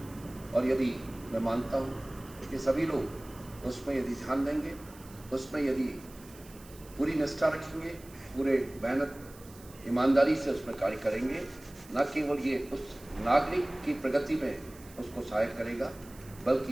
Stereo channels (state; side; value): noise; right; hiss, 21 dB below the sound